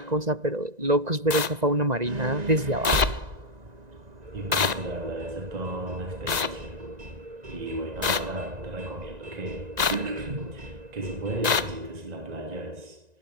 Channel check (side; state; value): left; late; 1.9 ms